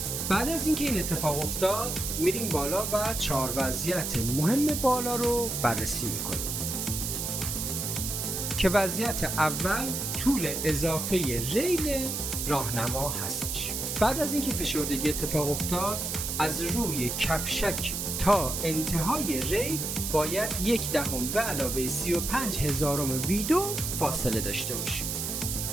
بعد از اینکه این اتفاق افتاد میریم بالا و 4 وضعیت مهم بالا رو بررسی میکنیم که وضعیت اول طول اضافه ریل راهنما هستش. بعد از اینکه فشردگی اتفاق افتاد از روی کفشک تا انتهای ریل باید 1/10 به علاوه 35,000 وی2 فاصله داشته باشیم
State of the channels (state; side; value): noise; right; hiss, 3 dB below the sound